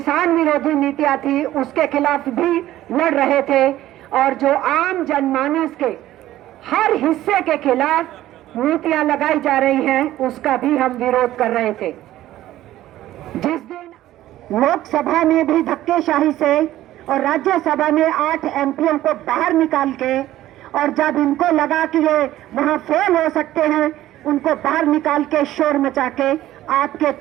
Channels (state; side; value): quieter; left; 14.3 dB